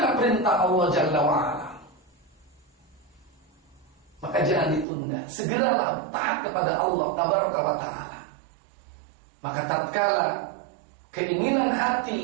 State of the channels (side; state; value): left; drops out; at 4.9 s